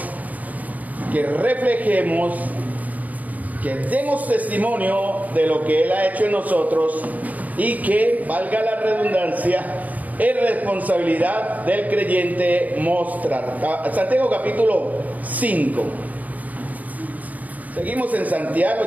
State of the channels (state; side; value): late; left; 0.077 ms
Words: que reflejemos, que demos testimonio de lo que Él ha hecho en nosotros y que, valga la redundancia, es responsabilidad del creyente mostrar. Santiago capítulo 5. Seguimos en